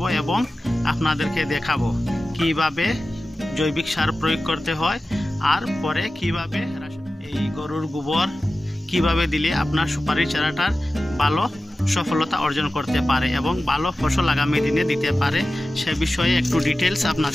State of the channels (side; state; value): both; normal; correlation 0.95